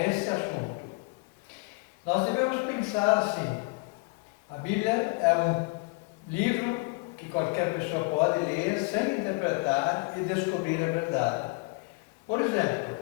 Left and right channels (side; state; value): right; quieter; 28.7 dB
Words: assunto. Nós devemos pensar assim: a Bíblia é um livro que qualquer pessoa pode ler sem interpretar e descobrir a verdade. Por exemplo,